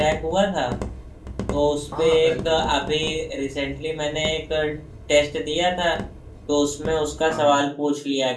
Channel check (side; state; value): both; identical; correlation 1.00